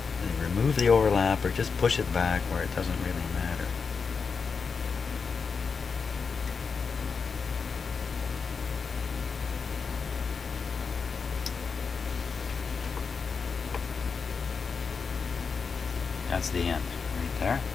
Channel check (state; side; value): quieter; right; 5.4 dB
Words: And remove the overlap or just push it back where it doesn't really matter. That's the end, right there.